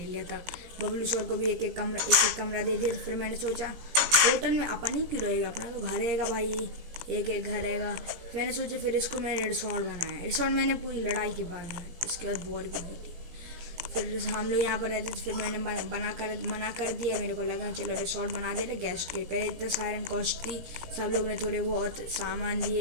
था। बबलू शोर को भी एक एक कमरा दे दिया। तो फिर मैंने सोचा होटल में अपन ही क्यों रहेगा, अपना तो घर रहेगा भाई, एक एक घर रहेगा। फिर मैंने सोचा, फिर इसको मैंने रिसोर्ट बनाया। रिसोर्ट मैंने पूरी लड़ाई के बाद बनाया, इसके बाद बोर भी हुई थी। फिर हम लोग यहाँ पर रहते थे, फिर मैंने मना कर दिया। मेरे को लगा चलो रिसोर्ट बना दे रहे गेस्ट के। पहले इतना सायरन कॉस्ट थी, सब लोग ने थोड़े बहुत सामान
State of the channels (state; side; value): late; left; 17 ms